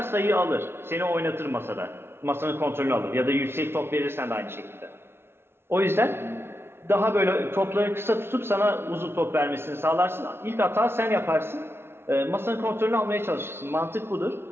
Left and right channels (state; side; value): late; left; 0.12 ms